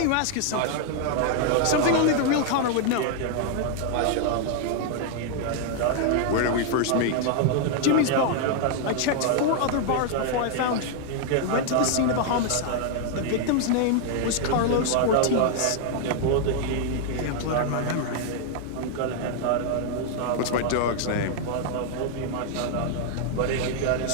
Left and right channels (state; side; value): different; both; correlation 0.00